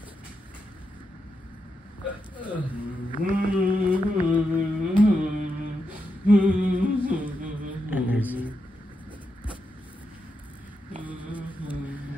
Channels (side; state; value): both; normal; correlation 0.85